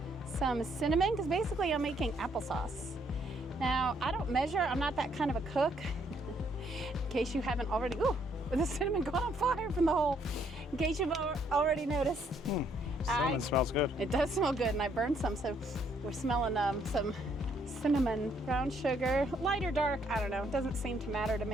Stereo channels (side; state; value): both; normal; correlation 0.69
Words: some cinnamon, because basically I'm making applesauce. Now, I don't measure. I'm not that kind of a cook. In case you haven't already, ooh, the cinnamon got on fire from the hole. In case you've already noticed. Cinnamon smells good. It does smell good, and I burned some, so we're smelling some cinnamon, brown sugar, light or dark, I don't know. It doesn't seem to matter to